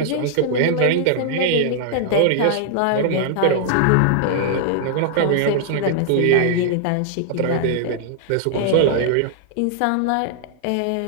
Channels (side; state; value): both; different; correlation -0.01